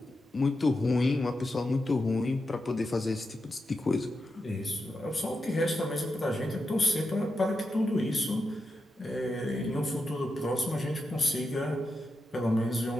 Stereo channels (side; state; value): both; normal; correlation 0.88